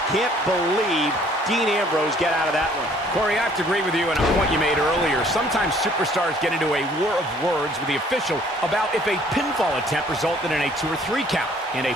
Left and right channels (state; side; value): normal; both; correlation 0.59